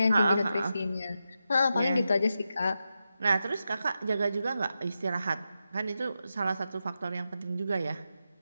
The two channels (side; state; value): both; inverted; correlation -0.88